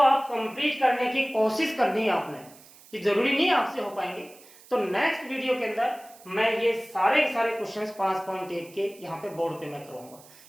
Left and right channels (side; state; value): right; noise; hiss, 23 dB below the sound